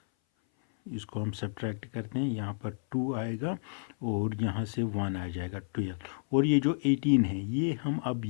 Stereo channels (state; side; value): silent; right; 57 dB below the other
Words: इसको हम सब्ट्रैक्ट करते हैं, यहाँ पर 2 आएगा और यहाँ से 1 आ जाएगा 12। और ये जो 18 है ये हम अब